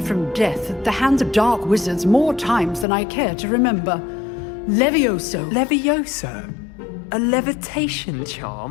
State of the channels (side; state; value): right; drops out; at 2.9 s